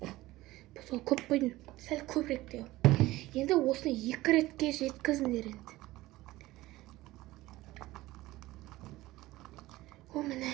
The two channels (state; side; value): quieter; left; 17.8 dB